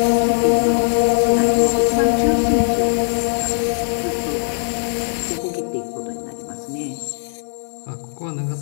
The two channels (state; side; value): silent; right; digital silence